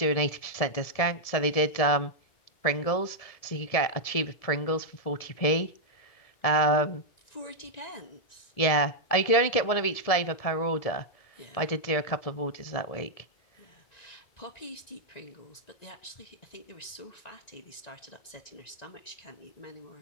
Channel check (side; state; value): right; late; 1.7 ms